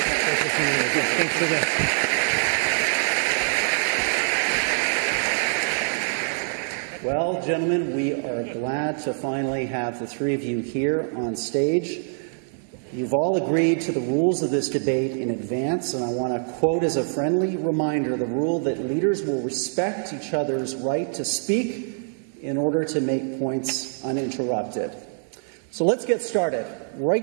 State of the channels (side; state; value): left; silent; 57 dB below the other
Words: Well, gentlemen, we are glad to finally have the three of you here on stage. You've all agreed to the rules of this debate in advance, and I want to quote as a friendly reminder the rule that leaders will respect each other's right to speak in order to make points uninterrupted. So let's get started.